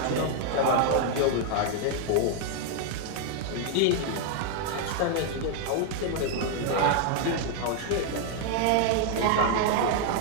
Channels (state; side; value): different; both; correlation 0.00